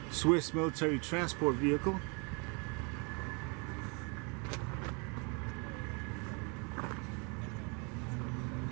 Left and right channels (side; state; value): left; quieter; 33.1 dB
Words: Swiss military transport vehicle.